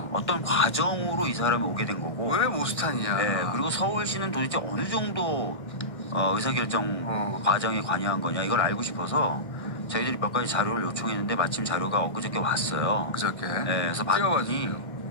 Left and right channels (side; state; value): right; late; 1.6 ms